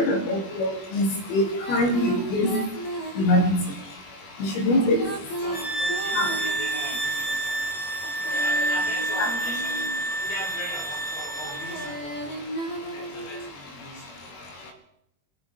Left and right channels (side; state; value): right; late; 21 ms